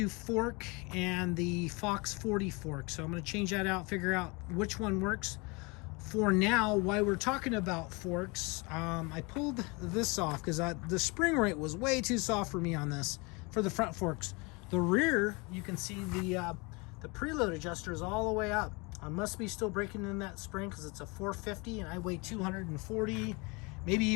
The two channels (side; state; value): right; quieter; 28.1 dB